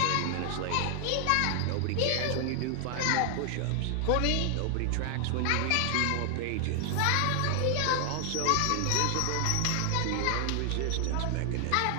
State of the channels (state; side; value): different; both; correlation 0.00